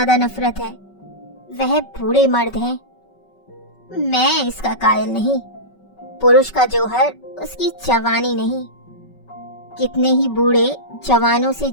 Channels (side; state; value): right; late; 5.3 ms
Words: नफरत है वह बूढ़े मर्द हैं। मैं इसका कायल नहीं। पुरुष का जौहर उसकी जवानी नहीं। कितने ही बूढ़े जवानों से